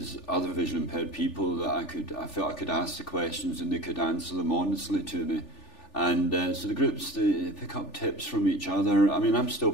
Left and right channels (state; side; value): late; right; 3.4 ms